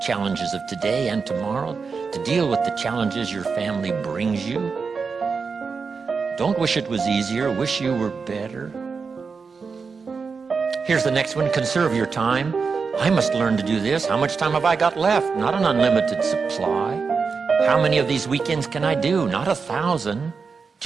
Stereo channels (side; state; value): left; quieter; 5.1 dB